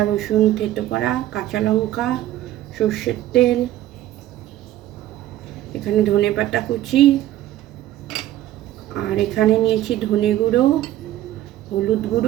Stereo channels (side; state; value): left; quieter; 13.7 dB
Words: রসুন থেতো করা, কাঁচা লঙ্কা, সর্ষের তেল, এখানে ধনেপাতা কুচি, আর এখানে নিয়েছি ধনে গুঁড়ো, হলুদ